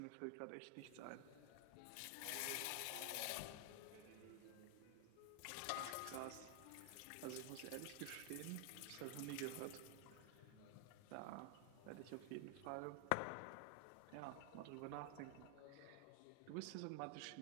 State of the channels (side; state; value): both; different; correlation 0.00